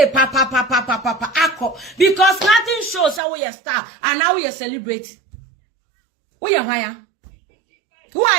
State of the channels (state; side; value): drops out; left; at 3.2 s